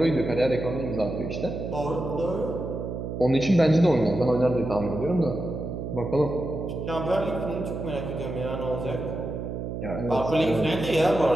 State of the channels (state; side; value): noise; right; hum, 5 dB below the sound